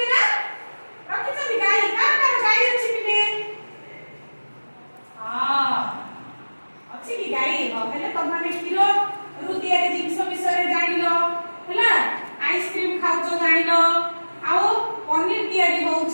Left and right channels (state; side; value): inverted; both; correlation -1.00